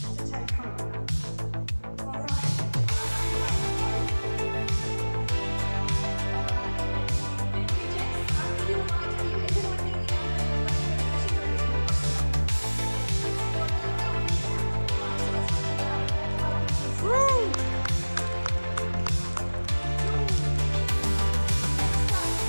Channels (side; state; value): both; inverted; correlation -1.00